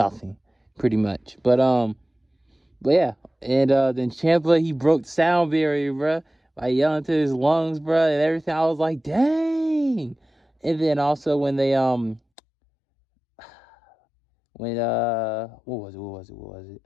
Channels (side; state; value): right; drops out; at 12.2 s